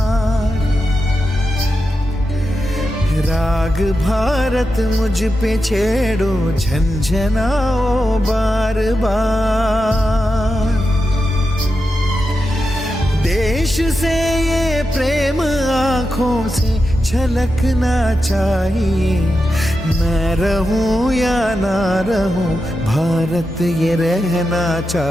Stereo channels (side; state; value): both; normal; correlation 0.89